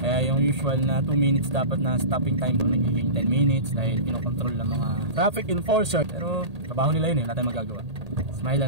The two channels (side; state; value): left; late; 1.8 ms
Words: Kaya yung usual na 2 minutes dapat na stopping time ko nagiging 10 minutes dahil kinokontrol ng mga traffic enforcer. Pero trabaho nila yun eh, wala tayong magagawa. Smile